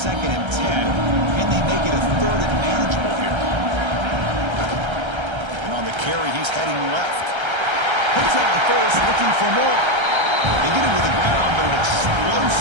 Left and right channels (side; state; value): left; late; 1.3 ms